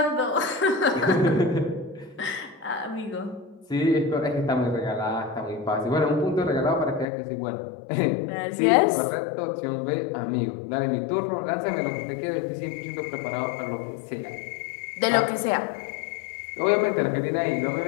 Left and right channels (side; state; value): right; drops out; at 7.1 s